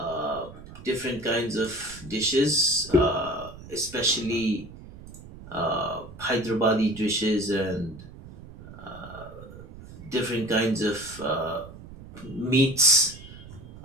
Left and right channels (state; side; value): noise; right; rumble, 16 dB below the sound